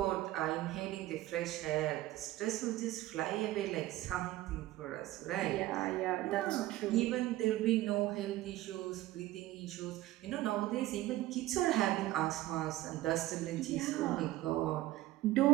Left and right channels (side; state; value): left; quieter; 16.1 dB